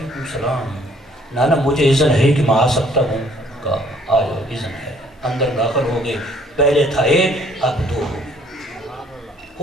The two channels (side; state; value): both; normal; correlation 0.60